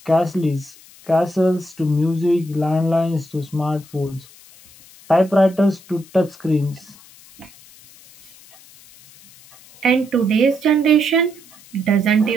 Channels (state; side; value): noise; left; hiss, 24 dB below the sound